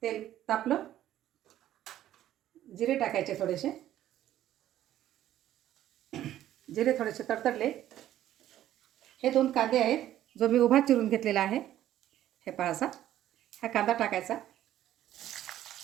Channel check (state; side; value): quieter; left; 12.5 dB